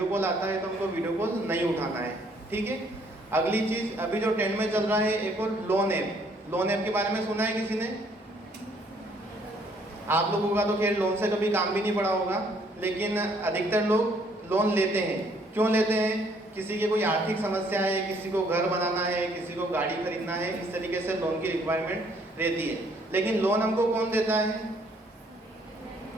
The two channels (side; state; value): both; normal; correlation 0.65